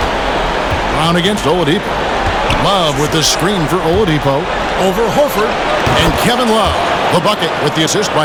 Brown against Oladipo. Love with the screen for Oladipo. Over Horford. And Kevin Love, the bucket with the assist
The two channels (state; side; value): identical; both; correlation 1.00